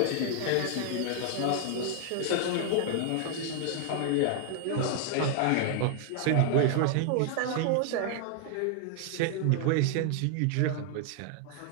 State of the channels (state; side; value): different; both; correlation 0.00